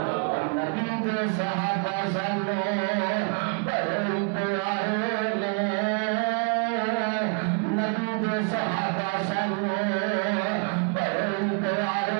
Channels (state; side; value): quieter; left; 38.0 dB